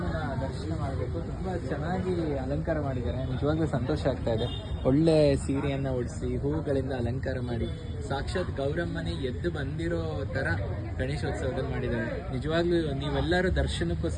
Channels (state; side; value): identical; both; correlation 1.00